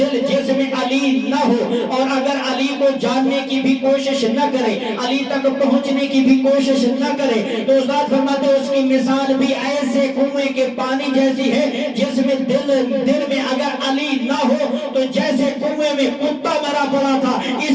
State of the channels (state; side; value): identical; both; correlation 1.00